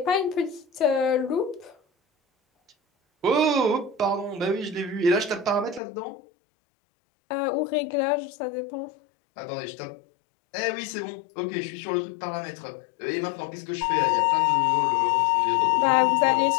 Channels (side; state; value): right; drops out; at 5.8 s